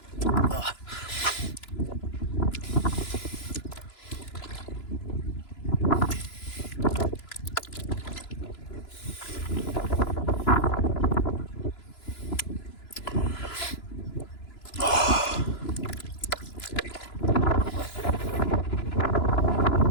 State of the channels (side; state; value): right; late; 2.9 ms